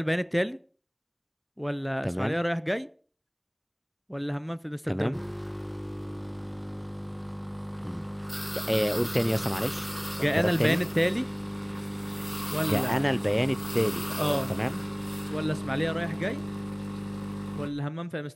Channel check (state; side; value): identical; both; correlation 1.00